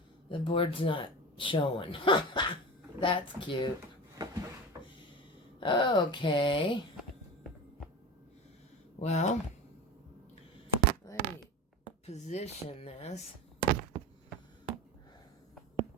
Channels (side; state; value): both; normal; correlation 0.30